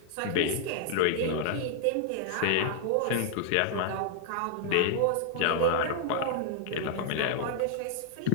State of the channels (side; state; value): both; different; correlation 0.00